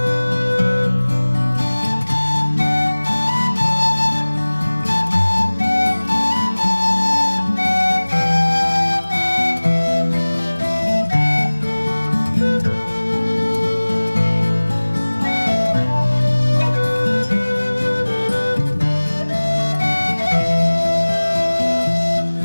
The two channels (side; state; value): both; inverted; correlation -1.00